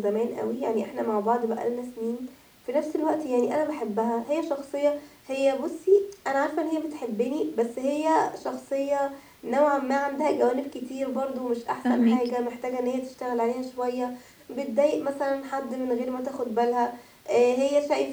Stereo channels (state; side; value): identical; both; correlation 1.00